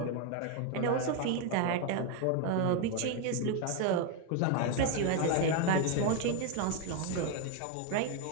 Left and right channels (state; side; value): different; both; correlation 0.01